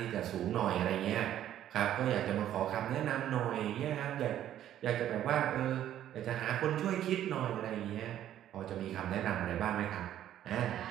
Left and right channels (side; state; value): left; quieter; 11.5 dB